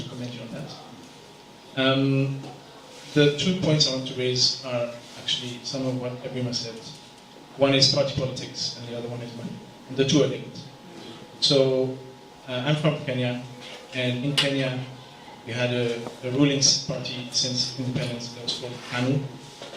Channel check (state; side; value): identical; both; correlation 1.00